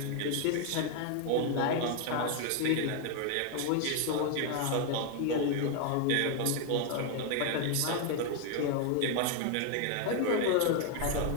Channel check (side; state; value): both; different; correlation 0.01